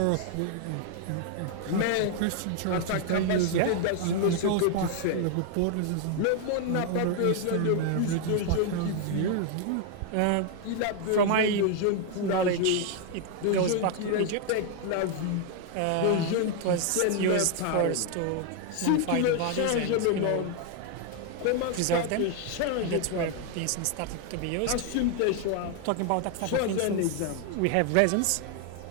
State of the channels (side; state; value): both; different; correlation 0.00